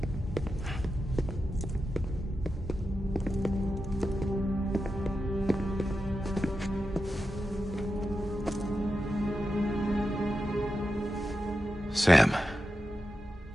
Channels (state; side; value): normal; both; correlation 0.90